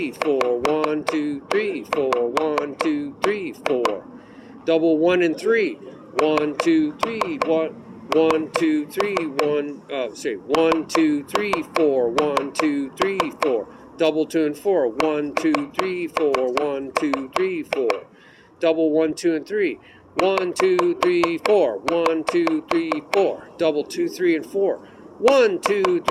4, 1, 2, 3, 4, 1, 2, 3, 4. Double 1 and 3. 1, 2, 3, 1, 2, 3, 1, 2, 3, 4, 1, 2, 3, 4. Double 2 and 4. 1, 2, 3, 4, 1, 2, 3, 4. Double 1, 2, and 3. 1, 2, 3, 4. 1, 2, 3, 4. Double 2, 3, and 4. 1, 2,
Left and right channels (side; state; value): both; identical; correlation 1.00